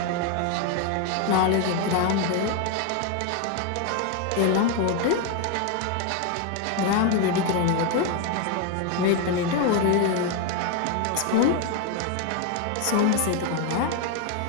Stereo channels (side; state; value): both; different; correlation 0.01